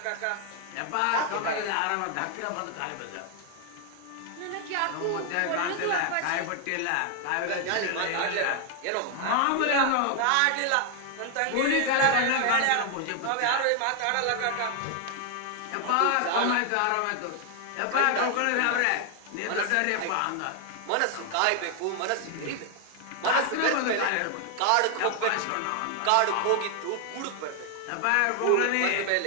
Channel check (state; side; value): different; both; correlation 0.00